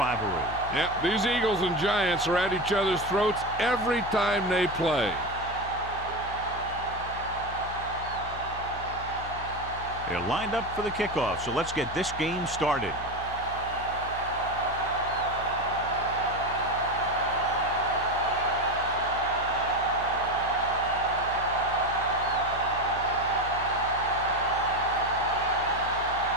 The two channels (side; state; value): left; noise; hum, 13 dB below the sound